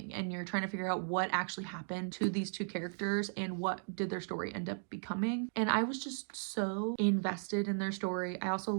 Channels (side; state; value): left; silent; digital silence